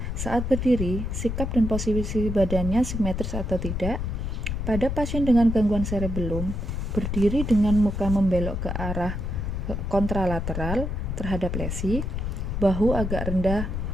saat berdiri, sikap dan posisi badannya simetris atau tidak. Pada pasien dengan gangguan cerebellum, berdiri dengan muka membelok ke arah kontralateral terhadap lesi, bahu agak rendah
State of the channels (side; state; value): left; noise; rumble, 3 dB below the sound